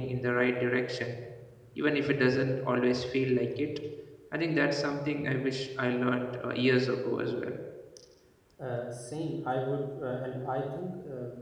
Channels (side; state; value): both; identical; correlation 1.00